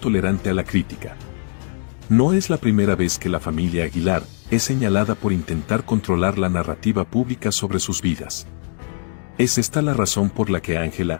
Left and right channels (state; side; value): silent; right; 57 dB below the other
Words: a la crítica. No es la primera vez que la familia Aguilar es señalada por intentar controlar la narrativa pública sobre sus vidas. ¿Es esta la razón por la que Ángela